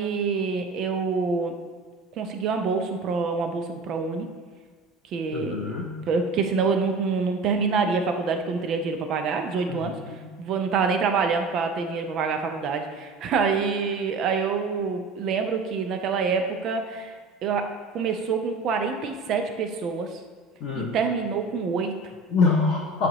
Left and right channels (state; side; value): quieter; left; 3.4 dB